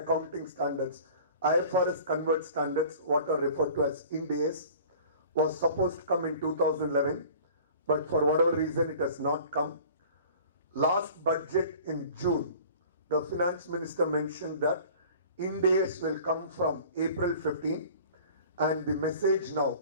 standards, IFRS converged standards, what are referred to as Ind AS, was supposed to come in 2011, but for whatever reason it has not come. Last budget in June, the finance minister mentioned that Ind AS will come from April 15, and the message now,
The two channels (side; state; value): both; inverted; correlation -0.45